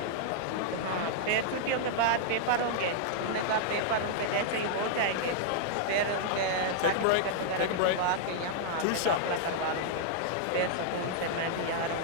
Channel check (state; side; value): different; both; correlation -0.01